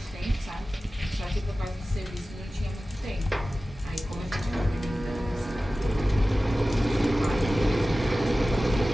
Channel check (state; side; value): normal; both; correlation 0.96